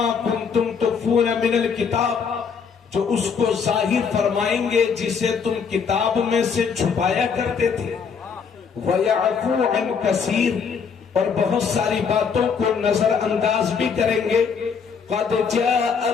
کنتم تخفون من الکتاب، جو اس کو ظاہر فرمائیں گے جسے تم کتاب میں سے چھپایا کرتے تھے، وَيَعْفُو عَنْ كَثِيرٍ، اور بہت ساری باتوں کو نظر انداز بھی کریں گے۔ قَدْ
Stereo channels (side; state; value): right; quieter; 6.1 dB